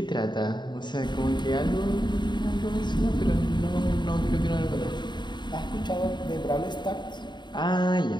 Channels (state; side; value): late; right; 0.22 ms